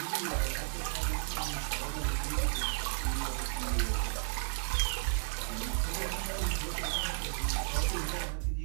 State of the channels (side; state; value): left; silent; 55 dB below the other